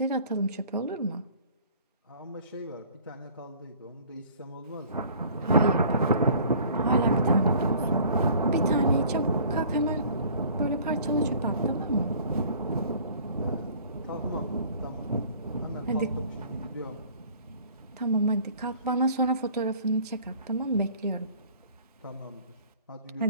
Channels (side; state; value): both; inverted; correlation -0.50